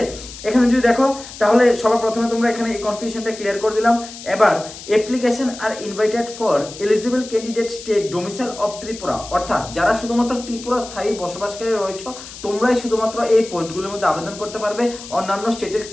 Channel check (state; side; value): noise; left; hiss, 14 dB below the sound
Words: এখানে যদি দেখো তাহলে সবার প্রথমে তোমরা এখানে এই কনফিউশনটা ক্লিয়ার করে দিলাম। এবার অ্যাপ্লিকেশন আর invited for eligible candidate state domicile of Tripura, অর্থাৎ যারা শুধুমাত্র ত্রিপুরা স্থায়ী বসবাসকারী রয়েছে তোমরাই শুধুমাত্র এই পোস্টগুলোর মধ্যে আবেদন করতে পারবে। অন্যান্য স্টেটের